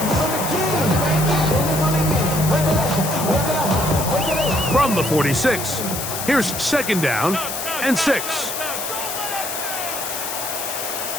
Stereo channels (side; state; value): left; noise; hiss, 5 dB below the sound